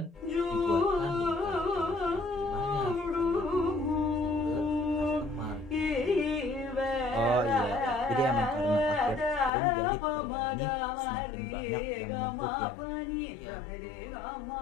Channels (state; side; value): drops out; right; at 9.5 s